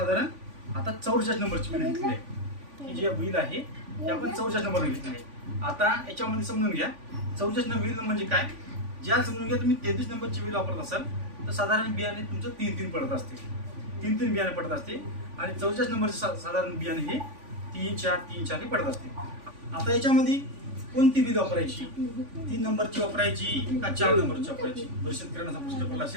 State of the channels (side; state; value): left; late; 3.5 ms